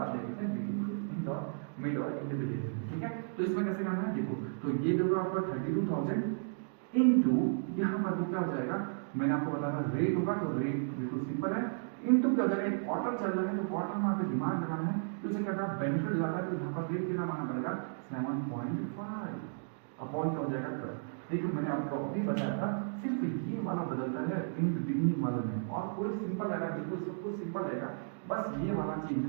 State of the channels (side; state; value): left; silent; digital silence